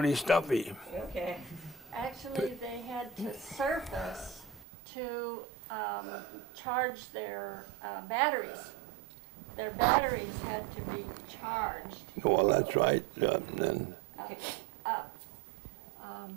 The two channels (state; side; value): drops out; left; at 4.7 s